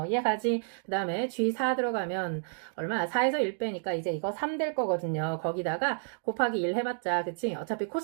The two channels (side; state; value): left; silent; digital silence